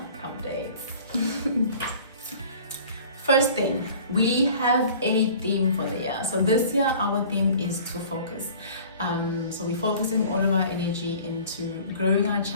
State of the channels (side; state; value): both; inverted; correlation -0.47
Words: updates. First thing, we have a theme for the year. So this year, our theme is to focus. So we're focusing all of our energy into growing our